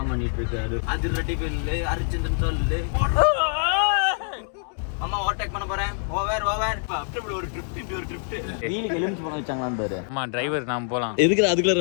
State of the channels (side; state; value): right; silent; 60 dB below the other